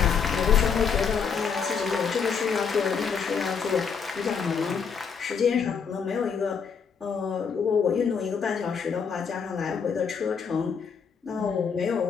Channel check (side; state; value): right; quieter; 6.3 dB